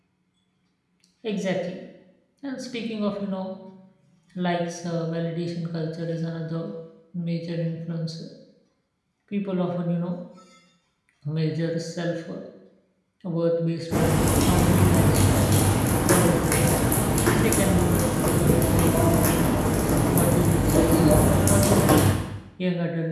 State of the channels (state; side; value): identical; both; correlation 1.00